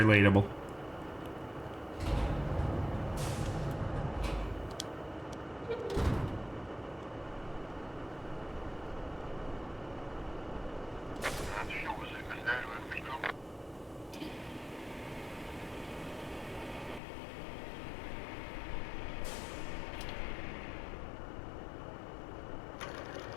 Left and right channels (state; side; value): drops out; right; at 17.0 s